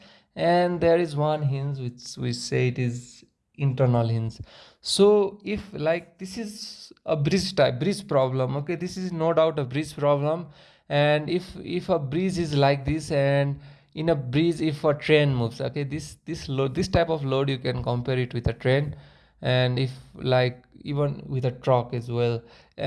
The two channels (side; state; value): both; identical; correlation 1.00